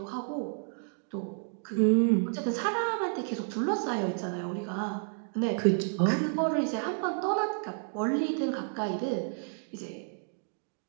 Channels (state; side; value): silent; left; 57 dB below the other